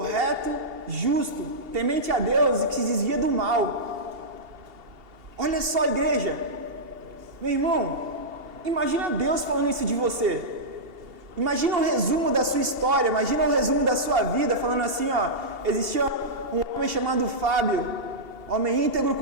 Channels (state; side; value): late; left; 2.8 ms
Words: justo, temente a Deus e que se desvia do mal. Olha só, igreja, meu irmão, imagina Deus falando isso de você. Imagina um resumo da sua história, imagina um resumo da sua vida, falando assim, ó: existia um homem chamado Fábio, homem íntegro,